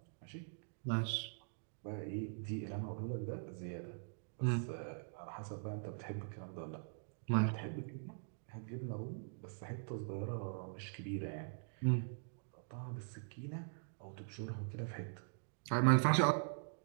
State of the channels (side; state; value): left; silent; digital silence